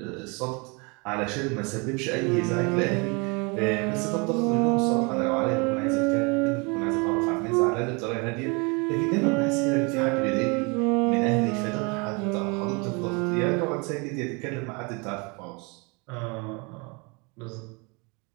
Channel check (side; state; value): left; quieter; 30.1 dB